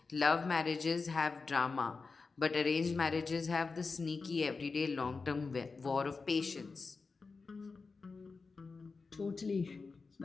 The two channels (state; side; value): quieter; right; 4.4 dB